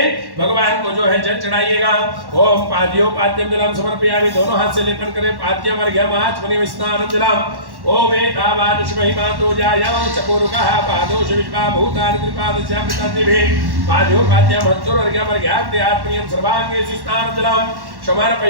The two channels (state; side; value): late; left; 1.1 ms